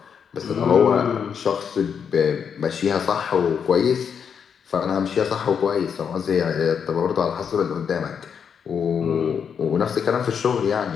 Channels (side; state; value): right; quieter; 7.1 dB